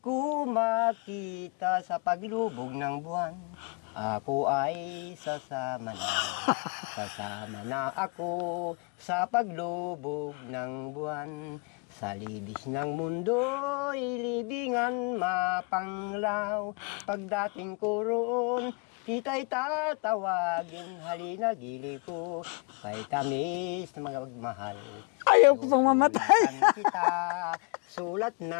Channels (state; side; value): quieter; right; 34.4 dB